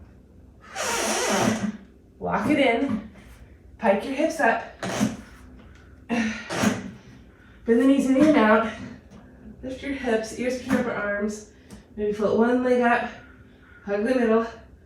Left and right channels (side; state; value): both; identical; correlation 1.00